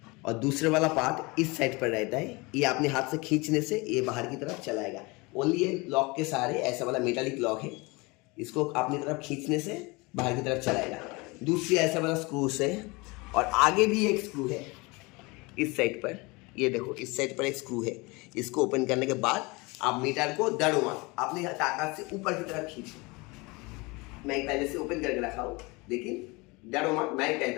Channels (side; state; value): right; quieter; 25.5 dB